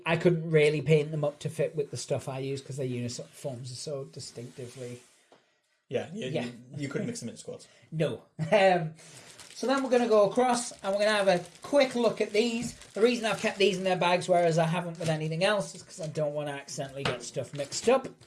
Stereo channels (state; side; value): identical; both; correlation 1.00